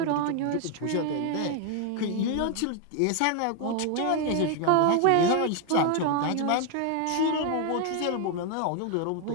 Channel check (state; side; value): different; both; correlation 0.01